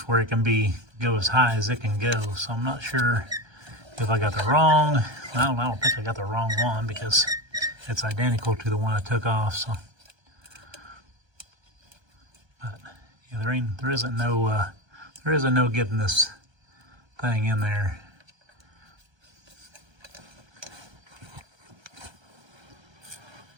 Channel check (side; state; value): left; late; 1.3 ms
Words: where it can go as high as it can go. So I'm not sure if I got the wrong. I don't think I got the wrong one because it's identical to the one I took off. So, but yeah, there isn't no getting this thing in there.